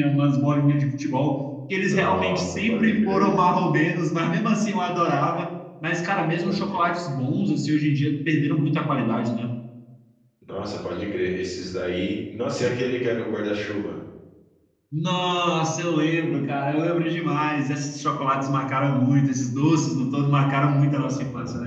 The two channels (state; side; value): identical; both; correlation 1.00